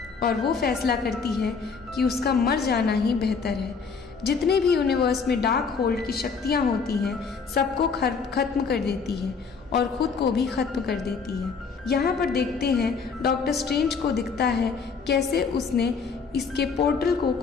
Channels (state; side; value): quieter; right; 5.3 dB